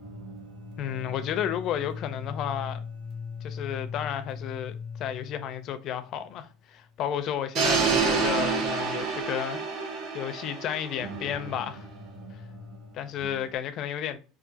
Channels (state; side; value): normal; both; correlation 0.34